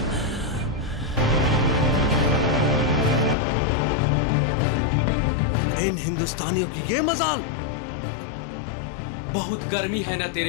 इन हिंदुस्तानियों की ये मजाल। बहुत गर्मी है ना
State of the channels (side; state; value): right; drops out; at 3.4 s